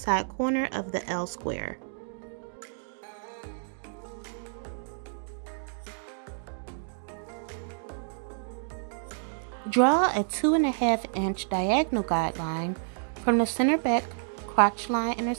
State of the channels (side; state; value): left; silent; digital silence